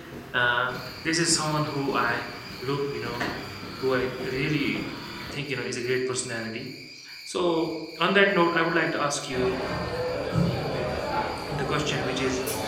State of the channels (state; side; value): identical; both; correlation 1.00